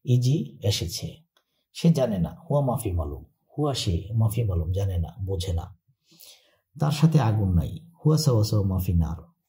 ইজি এসেছে। সে জানে না, হুয়া মাফি মালুম, হুয়া সে, মাফি মালুম জানে না, বোঝে না। তার সাথে আগুন নাই, হুয়া সাওয়া সাওয়া মাফি নার,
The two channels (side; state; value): both; identical; correlation 1.00